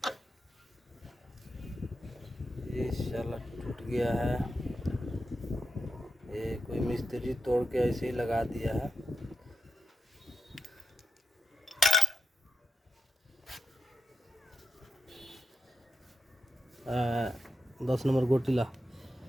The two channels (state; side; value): normal; both; correlation 0.87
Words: ये शाला टूट गया है, ये कोई मिस्त्री तोड़ के ऐसे ही लगा दिया है। आ, 10 नंबर